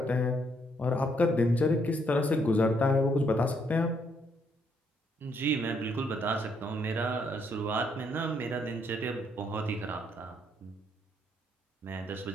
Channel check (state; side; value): normal; both; correlation 0.72